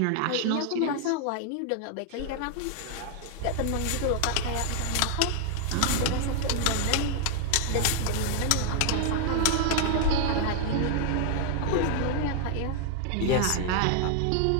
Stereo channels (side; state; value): both; different; correlation 0.00